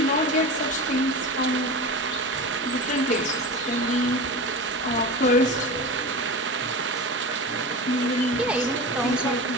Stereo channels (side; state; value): both; normal; correlation 0.28